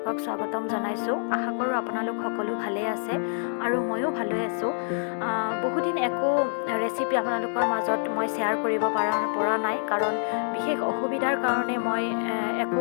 স্বাগতম জনাইছোঁ। আশা কৰোঁ আপোনালোক সকলো ভালেই আছে আৰু ময়ো ভালেই আছোঁ। বহুদিন একো ৰেচিপি আপোনালোকৰ মাজত মই শ্বেয়াৰ কৰিব পৰা নাই, কাৰণ বিশেষ অসুবিধাৰ কাৰণে মই একো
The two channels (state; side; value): silent; right; digital silence